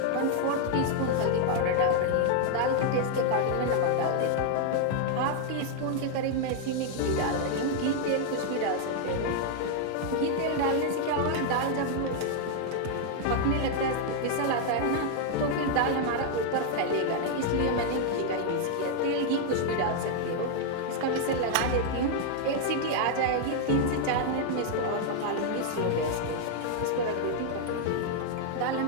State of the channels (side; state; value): both; different; correlation 0.00